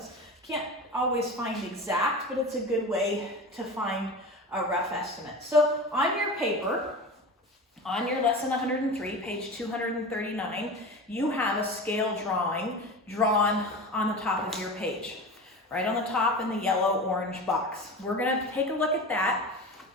Can't always find exact, but it's a good way to find a rough estimate. So on your paper, on your lesson 103, page 239, you have a scale drawing drawn on the top of your page, right on the top in the yellow-orange box. We're going to take a look at that,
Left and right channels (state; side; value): normal; both; correlation 0.30